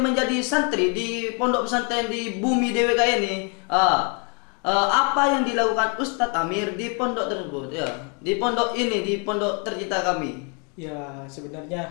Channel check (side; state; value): right; quieter; 36.0 dB